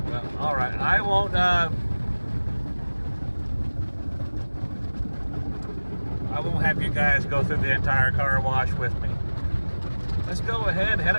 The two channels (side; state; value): both; inverted; correlation -1.00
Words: Well, all right, I won't have you guys go through the entire car wash with me. Let's go ahead and head